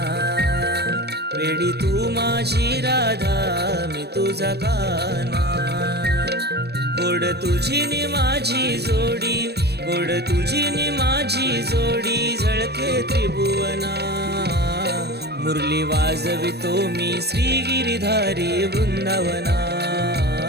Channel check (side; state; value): left; late; 0.47 ms